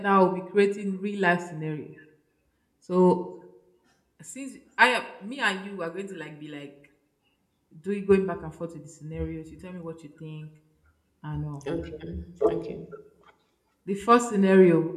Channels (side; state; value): both; identical; correlation 1.00